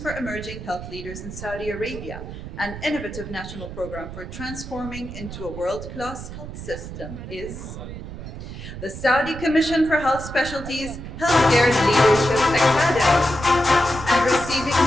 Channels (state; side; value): noise; right; rumble, 10 dB below the sound